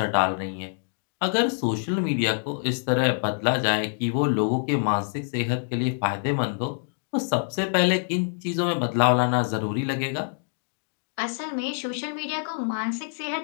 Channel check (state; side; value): silent; right; digital silence